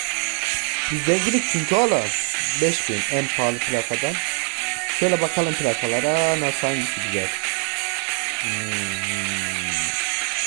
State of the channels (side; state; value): left; quieter; 37.0 dB